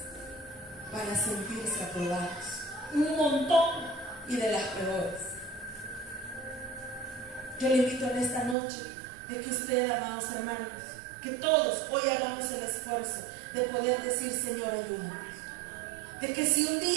para sentirse aprobados, un montón, y de las peores. Yo le invito en esta noche de que usted, amados hermanos, Que todos hoy hagamos el esfuerzo de poder decir, Señor, ayúdame. De que si un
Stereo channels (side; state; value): left; drops out; at 8.6 s